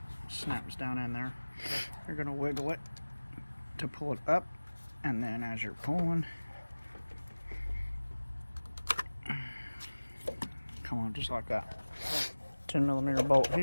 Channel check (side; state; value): both; inverted; correlation -1.00